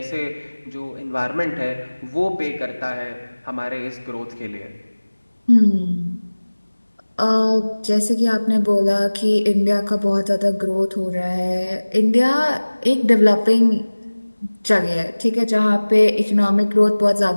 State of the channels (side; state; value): both; inverted; correlation -1.00